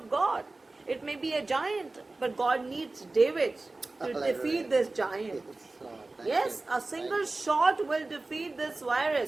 God. It may be a giant, but God needs David to Hallelujah. defeat this giant. Yes, Lord. Thank Yes, you. a single shot will defeat this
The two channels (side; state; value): left; quieter; 3.2 dB